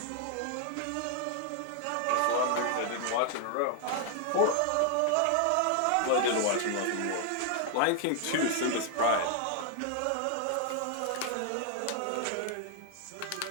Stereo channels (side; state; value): both; different; correlation 0.00